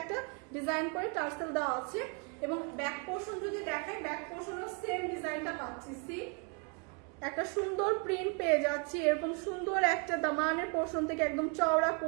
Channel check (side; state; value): left; quieter; 36.2 dB